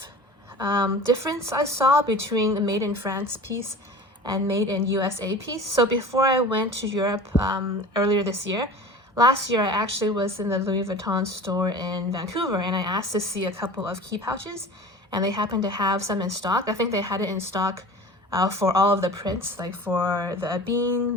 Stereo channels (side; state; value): both; normal; correlation 0.39